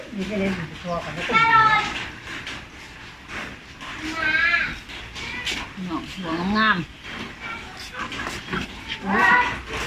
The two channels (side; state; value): both; identical; correlation 1.00